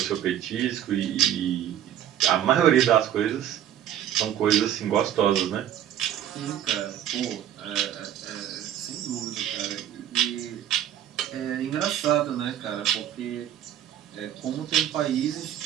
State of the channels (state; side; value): quieter; left; 10.9 dB